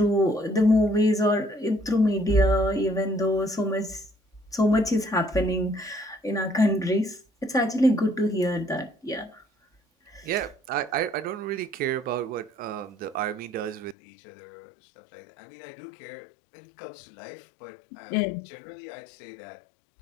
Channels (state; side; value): drops out; right; at 14.0 s